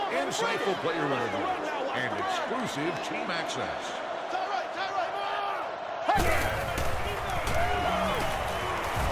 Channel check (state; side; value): identical; both; correlation 1.00